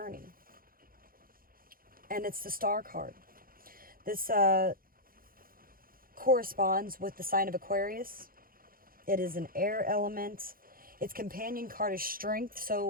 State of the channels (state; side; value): late; left; 0.42 ms